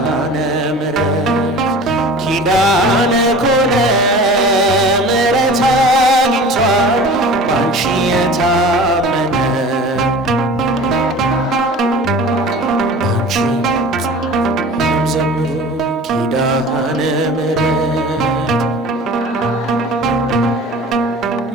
ምሕረት ኪዳነ ኮነ ምሕረት አግኝቷል ባንቺ የታመነ ባንቺ ዘምሩ ኪዳነ ምሕረት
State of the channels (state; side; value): normal; both; correlation 0.40